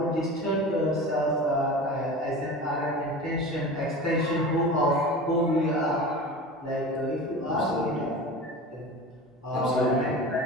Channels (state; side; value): normal; both; correlation 0.33